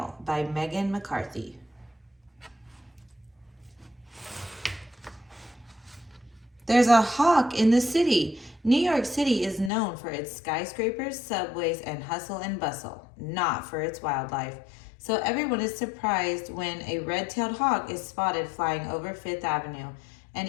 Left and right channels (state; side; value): drops out; right; at 9.7 s